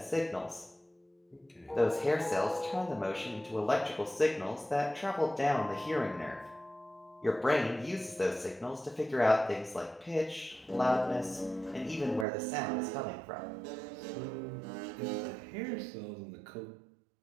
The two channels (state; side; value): drops out; left; at 12.2 s